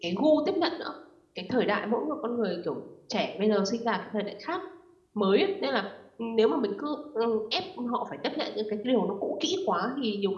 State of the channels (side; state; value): both; identical; correlation 1.00